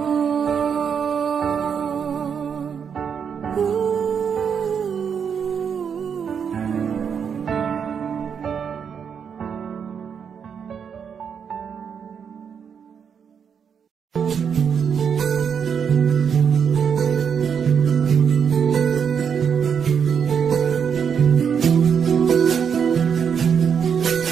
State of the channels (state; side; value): quieter; left; 7.1 dB